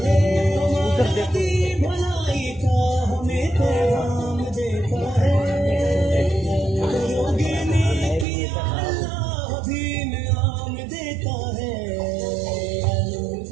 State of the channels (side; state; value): left; drops out; at 8.2 s